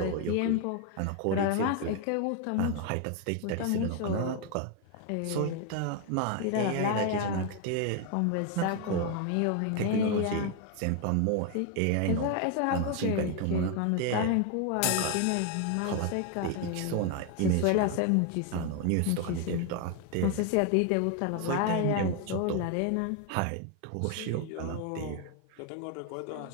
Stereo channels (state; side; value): different; both; correlation 0.01